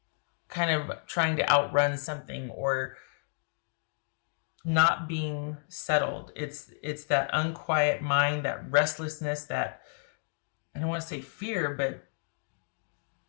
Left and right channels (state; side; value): silent; right; digital silence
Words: kind of trying to outrun something or not being settled. It's that unquiet mind, that restlessness, that I don't want to say fear, but